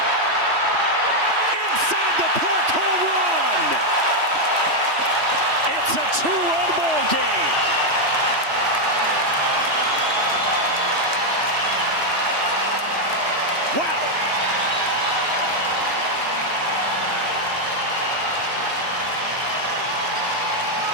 Inside the park, home run. It's a 2-run ball game. Wow.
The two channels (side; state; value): left; late; 3.1 ms